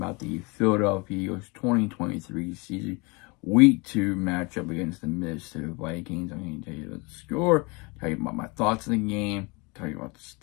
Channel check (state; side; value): quieter; right; 28.1 dB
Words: the Philadelphia Eagles 2023 season week 2 matchup against the Minnesota Vikings. I'm going to tell you about the score, tell you about my thoughts on the game, tell you about